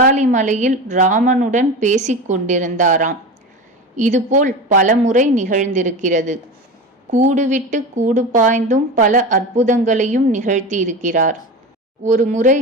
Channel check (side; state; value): both; normal; correlation 0.27